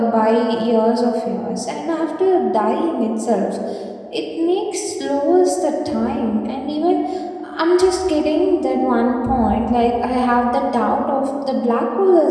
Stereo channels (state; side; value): identical; both; correlation 1.00